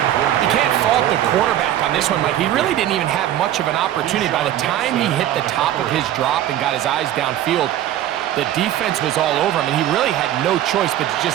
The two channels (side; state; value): left; quieter; 12.3 dB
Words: You can't fault the quarterback on this one, Mike. He really didn't even have much of an opportunity. By the time he hit the top of his drop and got his eyes downfield, the defense was all over him, and he really had no choice but to